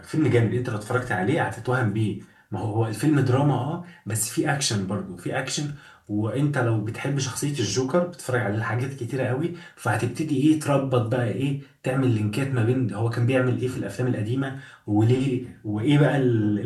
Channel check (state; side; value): identical; both; correlation 1.00